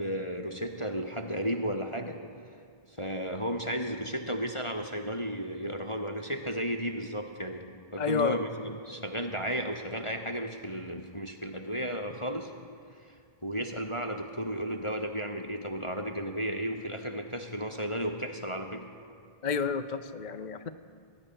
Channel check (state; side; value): late; right; 1.4 ms